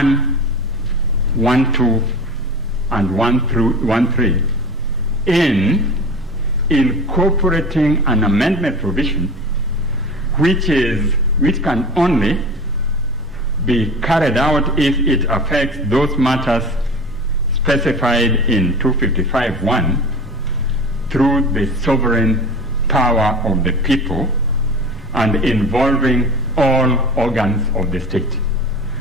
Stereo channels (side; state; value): both; normal; correlation 0.34